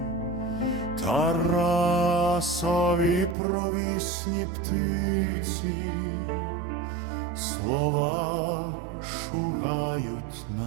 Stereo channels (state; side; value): drops out; left; at 3.4 s